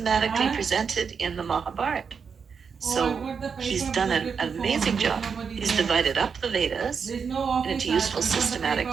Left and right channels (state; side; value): quieter; left; 6.1 dB